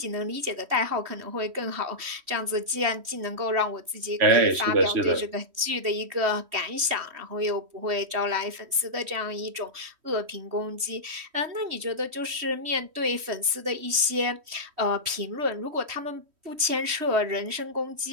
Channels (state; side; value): late; left; 3.1 ms